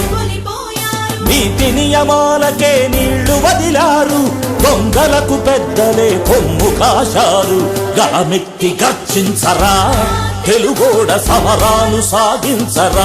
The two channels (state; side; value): identical; both; correlation 1.00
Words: నీతి నియమాలకే నీళ్లు వదిలారు దొంగలకు పెద్దలే కొమ్ము కాశారు గళమెత్తి గర్జించరా తెలుగోడ సమరాలు